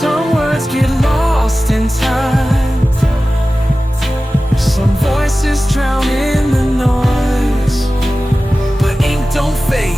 words get lost in time, some voices drown in the noise. But ink don't fade,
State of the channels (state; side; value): normal; both; correlation 0.95